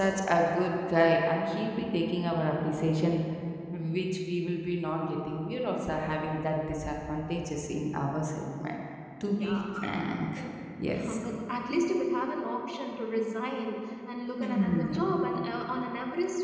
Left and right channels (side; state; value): both; identical; correlation 1.00